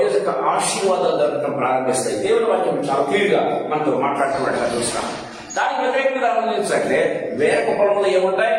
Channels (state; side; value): identical; both; correlation 1.00